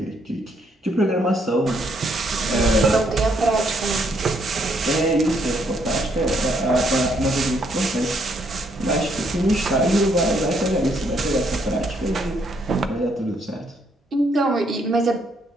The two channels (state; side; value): normal; both; correlation 0.71